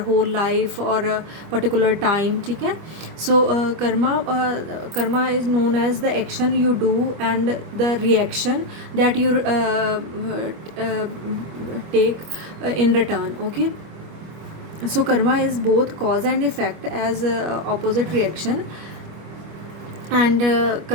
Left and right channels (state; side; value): late; left; 25 ms